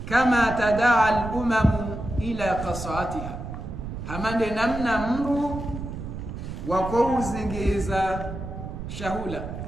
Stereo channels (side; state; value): right; noise; rumble, 8 dB below the sound